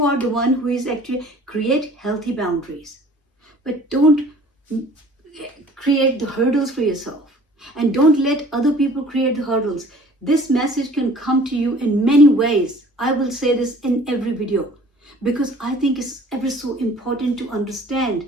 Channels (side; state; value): both; normal; correlation 0.50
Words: are the one who is actually create healthy boundaries. But don't create the hurdles for yourself. And don't let other people create the hurdles. This message can come to you in many ways. I will say this in every video. Because I think it's ever so important to